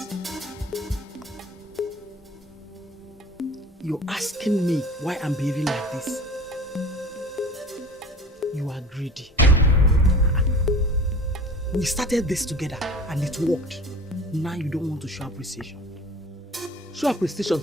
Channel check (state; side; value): normal; both; correlation 0.41